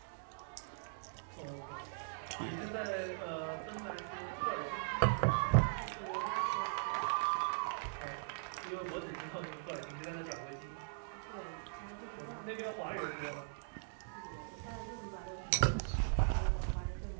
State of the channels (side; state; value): left; silent; digital silence